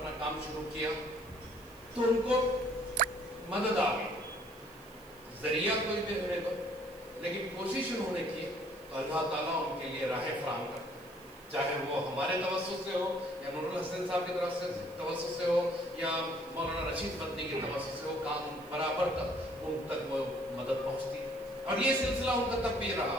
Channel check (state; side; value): noise; right; hiss, 25 dB below the sound